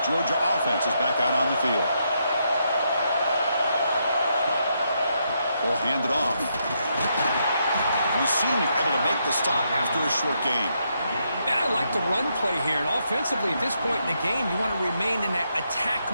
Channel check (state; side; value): inverted; both; correlation -0.79